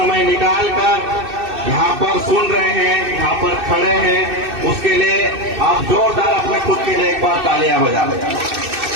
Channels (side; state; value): left; late; 2.6 ms